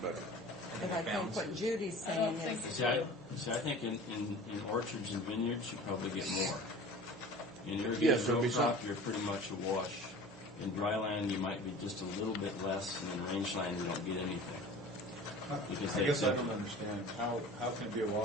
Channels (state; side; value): normal; both; correlation 0.40